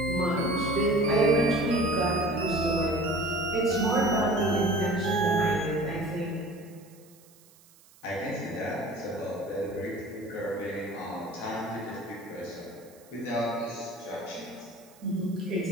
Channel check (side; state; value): right; noise; hiss, 27 dB below the sound